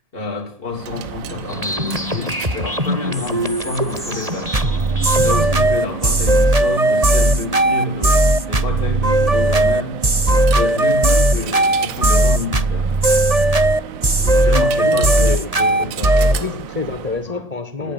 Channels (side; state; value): left; late; 1.7 ms